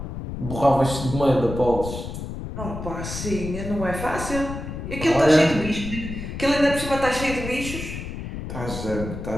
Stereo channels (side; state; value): left; noise; rumble, 7 dB below the sound